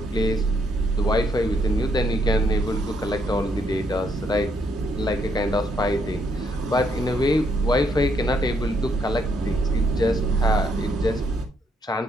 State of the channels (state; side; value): normal; both; correlation 0.73